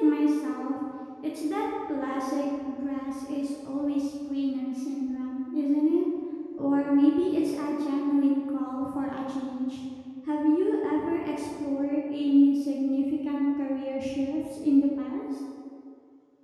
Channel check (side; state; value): both; identical; correlation 1.00